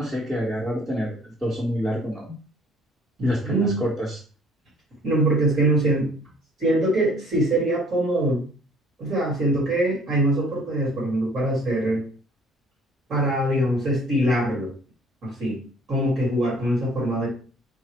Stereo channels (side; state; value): both; normal; correlation 0.56